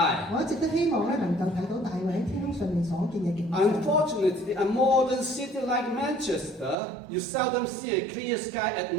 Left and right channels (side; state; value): left; drops out; at 6.8 s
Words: 我一直都希望咧能夠睇到大衛喺天空上面所見嘅景象。 Unfortunately, a modern city like Manchester, you seldom see a clear sky at